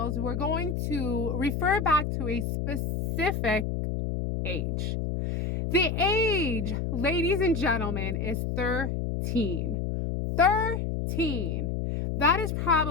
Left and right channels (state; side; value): noise; left; hum, 1 dB below the sound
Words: we're going to refer back to a specific age. The age, ladies and gentlemen, is 13. 13. That is